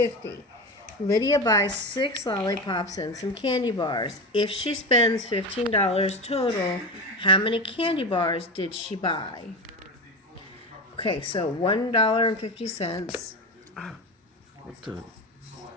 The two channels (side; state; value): both; normal; correlation 0.22